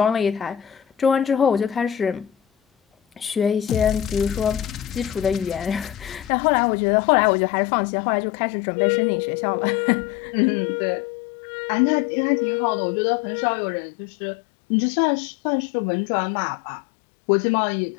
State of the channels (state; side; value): drops out; right; at 6.3 s